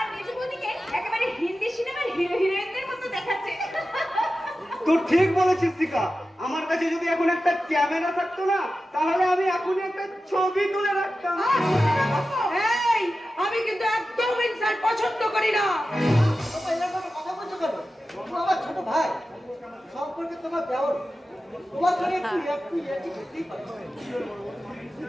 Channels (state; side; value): normal; both; correlation 0.93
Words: মেজবুদিকে একেবারে হিন্দি সিনেমার হিরো হিরোইনদের মতো দেখাচ্ছে। তুই ঠিক বলেছিস শিখা, আমার কাছে যদি এখন একটা ক্যামেরা থাকতো না তাহলে আমি এখনই একটা ছবি তুলে রাখতাম। এই আমি কিন্তু একদম ইনসাল্ট পছন্দ করি না। কথা বলছো কেন? আমার ছোট ভাই সম্পর্কে তোমার দেওয়ার তোমার সঙ্গে একটু